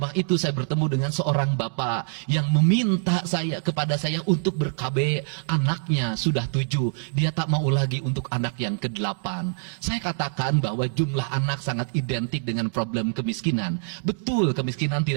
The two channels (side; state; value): left; silent; digital silence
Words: itu, saya bertemu dengan seorang bapak yang meminta kepada saya untuk ber-KB. Anaknya sudah 7. Dia tak mau lagi untuk anak yang ke-8. Saya katakan bahwa jumlah anak sangat identik dengan problem kemiskinan. Betul, kemiskinan